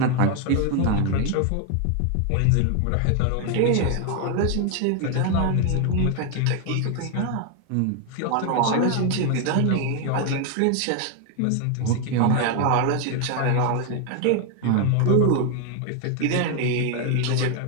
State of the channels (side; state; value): both; different; correlation 0.01